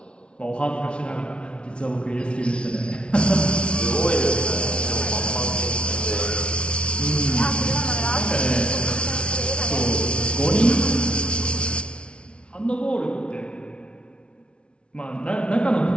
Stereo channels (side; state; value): right; late; 0.059 ms